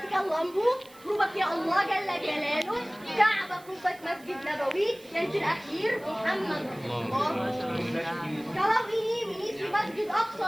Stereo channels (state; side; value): noise; right; hiss, 23 dB below the sound